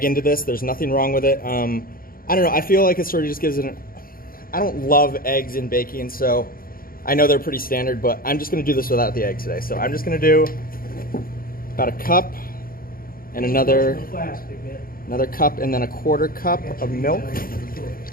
into this. There's nothing wrong with it. I don't know, I feel like it sort of just gives it I don't love eggs in baking, so I know they're pretty standard, but I'm just gonna do this without the egg today. So I'm just gonna do about a cup and another cup and then a 1/4 cup of milk.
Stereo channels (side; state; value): right; late; 0.42 ms